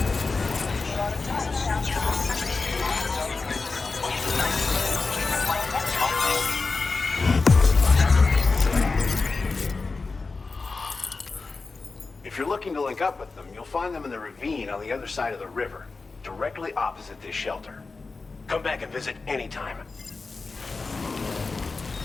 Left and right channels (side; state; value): right; quieter; 4.0 dB